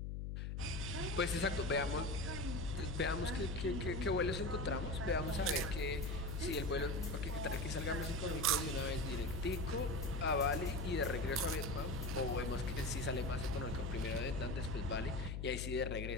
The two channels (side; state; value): left; noise; hum, 3 dB below the sound